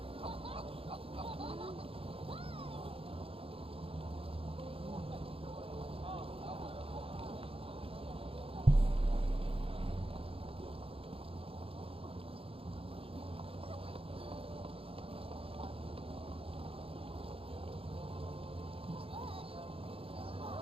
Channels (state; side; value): late; left; 0.27 ms